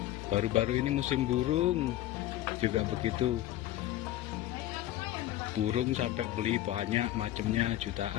Baru-baru ini musim burung juga begitu. Burung sampai beli banyak macamnya,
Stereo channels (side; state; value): right; quieter; 14.4 dB